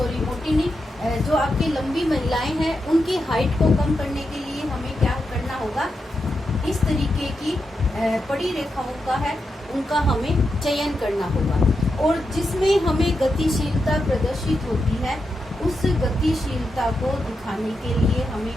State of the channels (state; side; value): normal; both; correlation 0.86